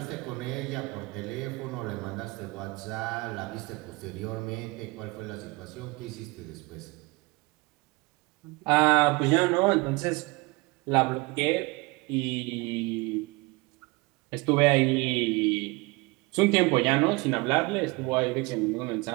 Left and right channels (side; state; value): left; quieter; 25.1 dB